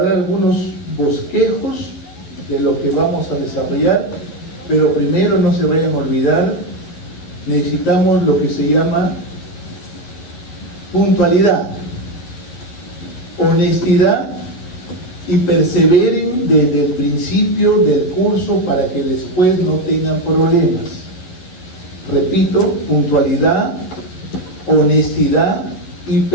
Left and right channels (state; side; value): late; right; 11 ms